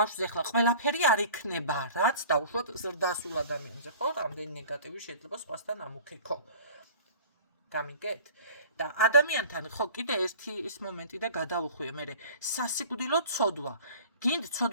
ახლა ყველაფერი არ იქნება, რაც დაუშვათ ზრდასრულ ადამიანზე, ხო? რამდენი ნეგატივი შეიძლება სხვასთან ამოქეკო. გამიგეთ? და ადამიანთან ხო კიდე ერთი ის მომენტი და გადავუხვიე მე სასიკვდილო ცოდვა. გინდ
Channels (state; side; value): inverted; both; correlation -0.44